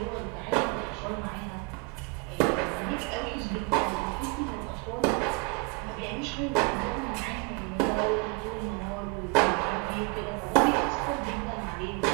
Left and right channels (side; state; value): left; quieter; 32.3 dB